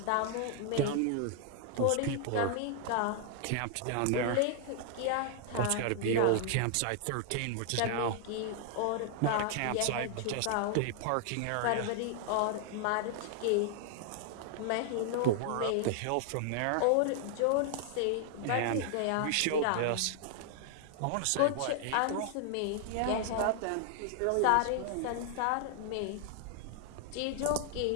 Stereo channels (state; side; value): different; both; correlation 0.00